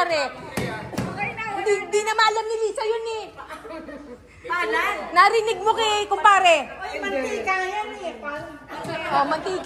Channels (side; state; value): both; identical; correlation 1.00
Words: Hindi na maalam ni Lisa yun eh. Palad. Narinig mo kay kumpare. Ay, mantika yan eh. Oh,